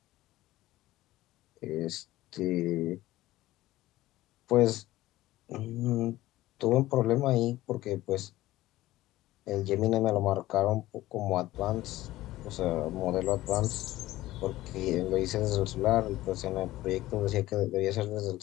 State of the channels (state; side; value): quieter; right; 16.5 dB